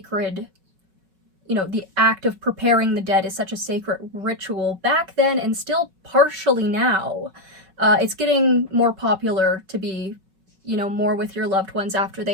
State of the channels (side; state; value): left; late; 5.3 ms